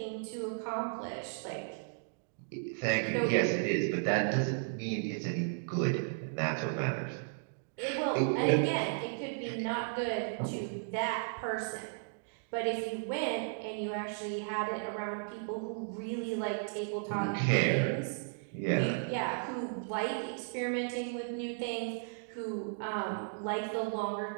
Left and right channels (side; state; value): left; silent; digital silence